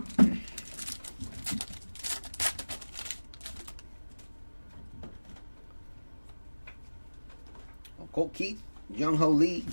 Colt Keith, Young Ho Lee.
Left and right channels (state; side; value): inverted; both; correlation -1.00